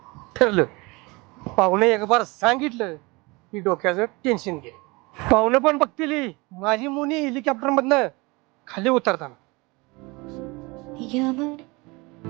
ठरलं. पाहुणे एक बार सांगितलं की डोक्याचं टेन्शन घे. पाहुणं पण बघतील माझी मोनी हेलिकॉप्टर मधनं खाली उतरताना.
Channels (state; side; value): quieter; left; 25.3 dB